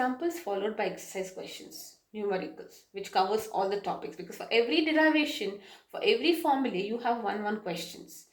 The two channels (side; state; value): both; identical; correlation 1.00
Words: followed by exercise questions, numericals, which covers all the topics, because for every derivation, for every formula, you have one questions.